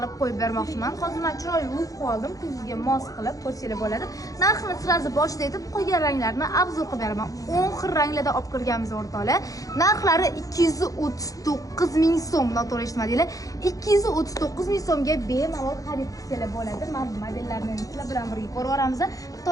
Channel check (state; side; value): late; right; 0.17 ms